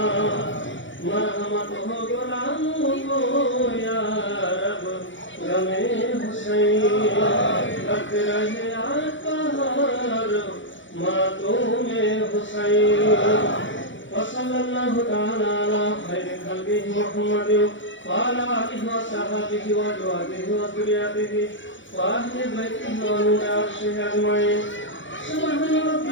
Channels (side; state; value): right; late; 0.55 ms